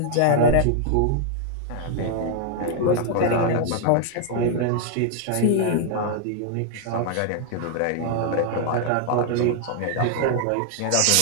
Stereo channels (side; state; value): both; different; correlation 0.00